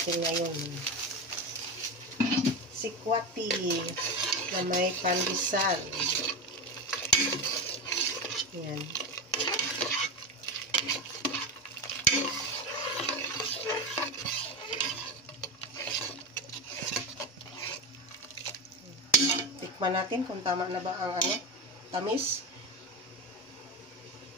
ngayon. Sikwati na may pandesal. Yan. Tikman natin kung tama na ba ang tamis.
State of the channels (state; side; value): normal; both; correlation 0.18